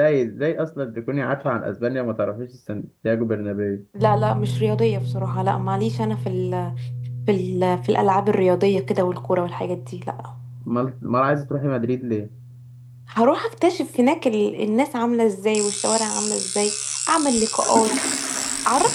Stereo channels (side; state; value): both; identical; correlation 1.00